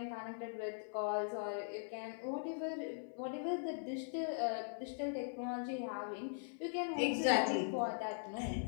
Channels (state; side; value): silent; right; 50 dB below the other